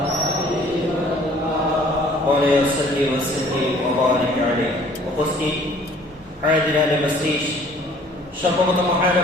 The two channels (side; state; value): both; normal; correlation 0.55